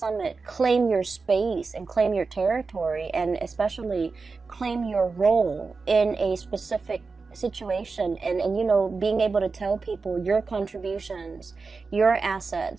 claim your space and claim your territory, and especially claim your role in a specific situation, and being able to tell people your contributions, your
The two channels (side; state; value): left; quieter; 4.4 dB